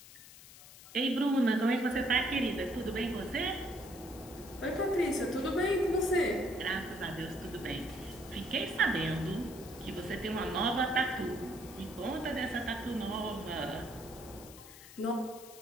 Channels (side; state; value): left; noise; hiss, 18 dB below the sound